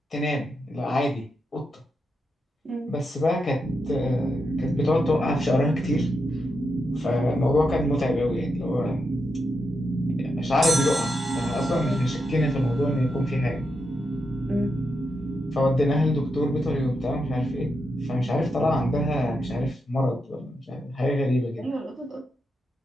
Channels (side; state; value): both; normal; correlation 0.84